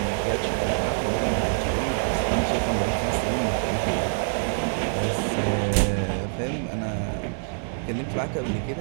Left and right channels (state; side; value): silent; left; 61 dB below the other